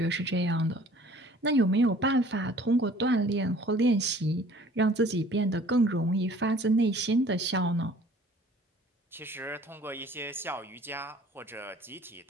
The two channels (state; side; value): normal; both; correlation 0.52